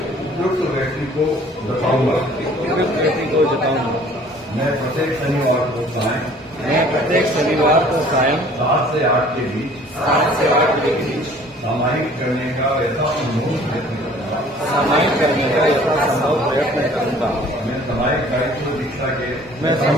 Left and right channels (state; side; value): normal; both; correlation 0.53